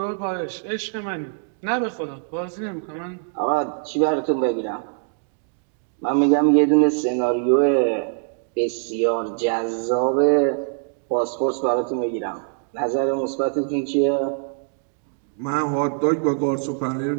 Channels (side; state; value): left; silent; digital silence